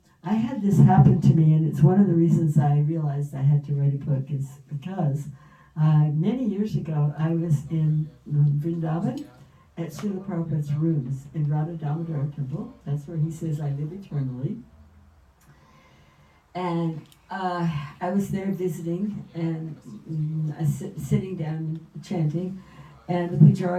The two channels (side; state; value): both; identical; correlation 1.00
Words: I had this happen to me, and it's one of the reasons I realized I had to write a book, is because many years ago I was in Vrindavan at Srila Prabhupada's rooms in Radha Damodar Temple. That's where he says, "I live eternally." And I was there visiting, and sitting down chanting, and the